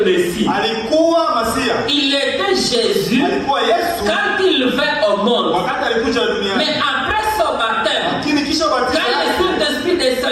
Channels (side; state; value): both; identical; correlation 1.00